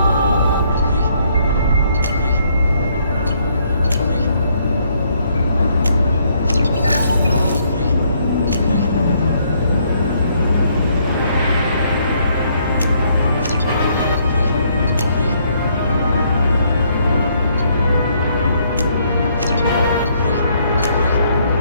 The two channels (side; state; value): both; inverted; correlation -0.69